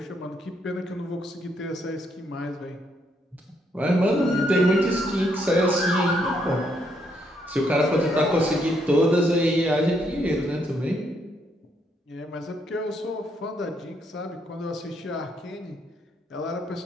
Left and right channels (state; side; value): normal; both; correlation 0.74